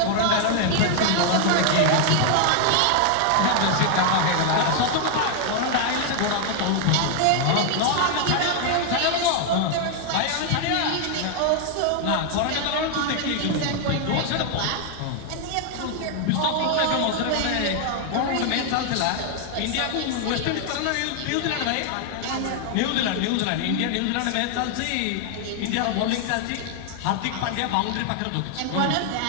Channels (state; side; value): different; both; correlation 0.00